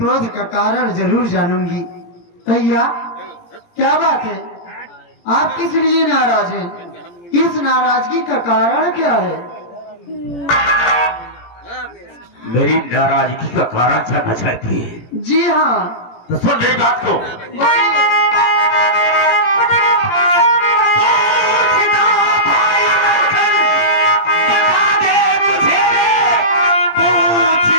का कारण जरूर जानूंगी। भैया क्या बात है? आप किस लिए नाराज हैं? इस नाराजगी का कारण क्या है? मेरी नाराजगी का कारण जानना चाहती है? जी हाँ। तो सुन मेरी बात को।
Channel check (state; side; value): late; right; 17 ms